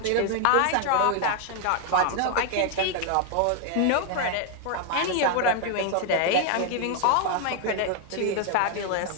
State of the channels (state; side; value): different; both; correlation 0.00